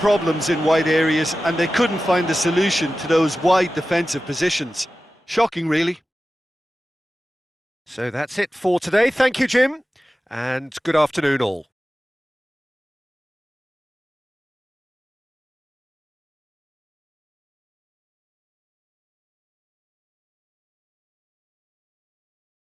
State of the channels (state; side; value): normal; both; correlation 0.95